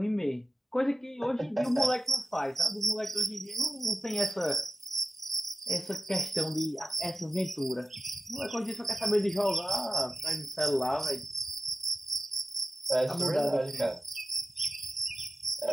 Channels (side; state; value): both; normal; correlation 0.93